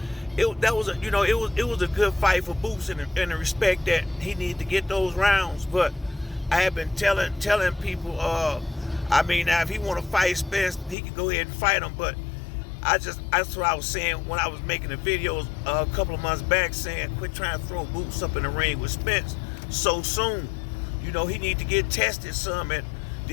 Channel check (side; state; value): right; drops out; at 11.0 s